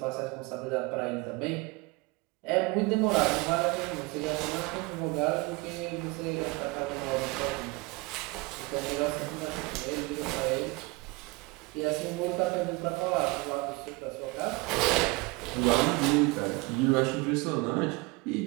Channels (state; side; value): quieter; left; 25.0 dB